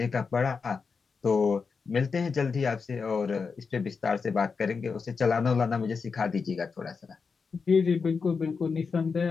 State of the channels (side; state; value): right; quieter; 5.2 dB